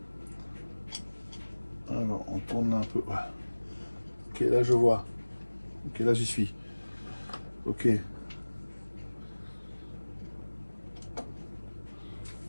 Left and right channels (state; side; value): inverted; both; correlation -1.00